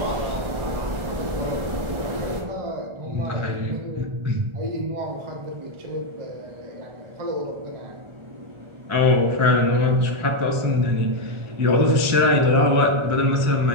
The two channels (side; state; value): left; late; 1.4 ms